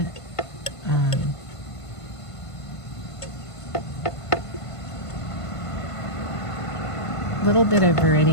it. A little bit of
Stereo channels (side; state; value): right; late; 1.5 ms